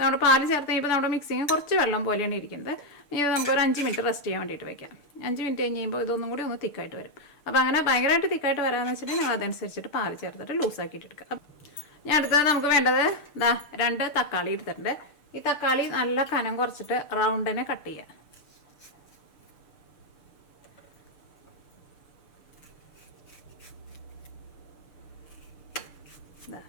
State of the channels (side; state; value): right; late; 6.7 ms